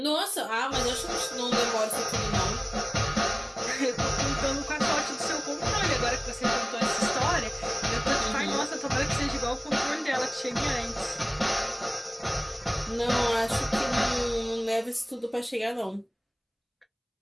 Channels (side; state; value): both; identical; correlation 1.00